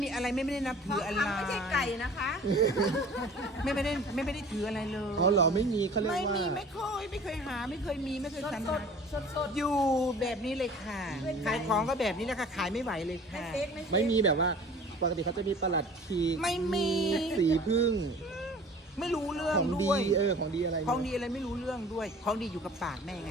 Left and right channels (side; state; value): both; normal; correlation 0.46